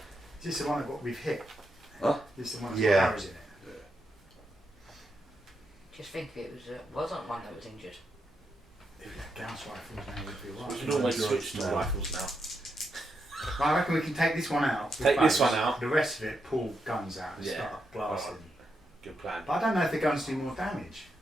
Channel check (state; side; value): normal; both; correlation 0.83